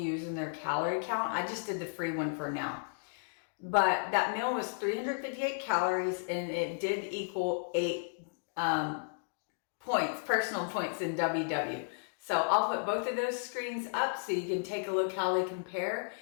their calorie count. I just did the free one for now. But that meal was 358 calories, and it did equal 8 points, personal points in WW. So I'll put both of those screens up so you can take a look how they compare.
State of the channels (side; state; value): right; silent; digital silence